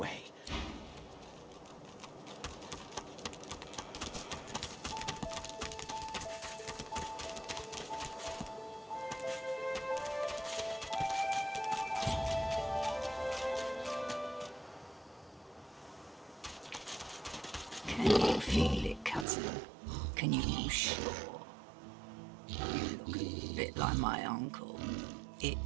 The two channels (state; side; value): drops out; left; at 19.2 s